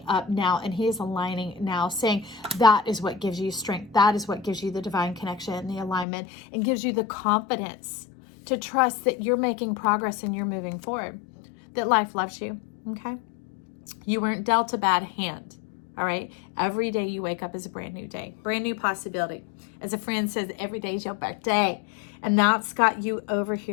up now, and he is aligning now, saying that is what gives you strength. That is what gives you the divine connection and the alignment, and gives you the confidence to trust that you're making progress and you're moving forward, that life loves you, okay? You weren't dealt a bad hand. All right. Every day you wake up is a brand new day, brand new possibility. As a friend says, every day is your birthday. And that's got you over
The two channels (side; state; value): right; drops out; at 6.1 s